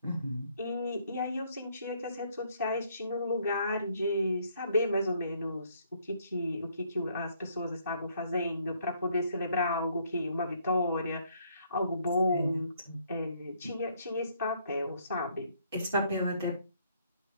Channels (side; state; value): both; inverted; correlation -0.67